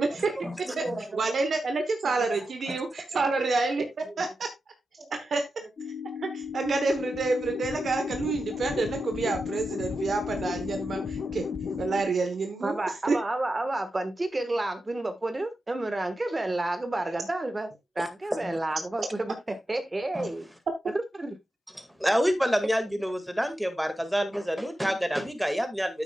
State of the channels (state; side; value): normal; both; correlation 0.90